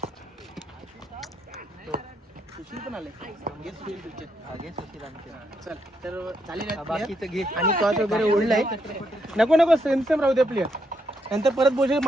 सुशील पण आले. चल तर चालेल घे. आणि टॉस वगैरे ओढलाय. नको सेम राहू दे प्लेअर. नंतर परत बोल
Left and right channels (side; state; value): both; normal; correlation 0.77